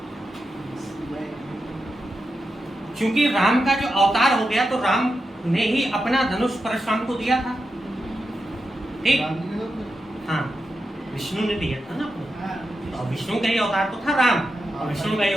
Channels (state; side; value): normal; both; correlation 0.88